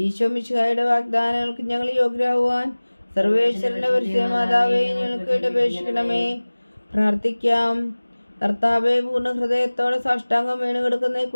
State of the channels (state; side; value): inverted; both; correlation -1.00